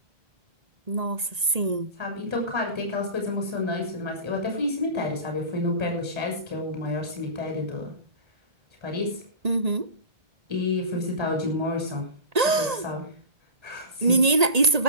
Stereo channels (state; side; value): late; left; 1.8 ms